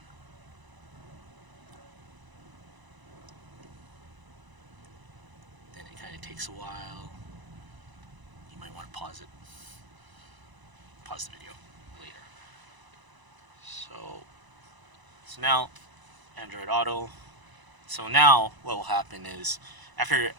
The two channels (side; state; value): left; late; 1.0 ms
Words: then it kind of takes a while. You might want to pause the video later. So now Android Auto. So now what will happen is